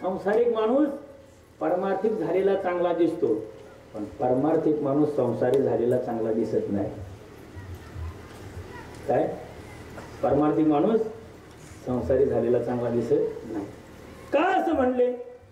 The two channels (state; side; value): identical; both; correlation 1.00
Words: माणूस परमार्थिक झालेला चांगला दिसतो, पण परमार्थिक माणूस संसारी झालेला चांगला दिसत नाही. काय? परमार्थिक माणूस संसारी झालेला चांगला दिसत नाही. का असं म्हणले?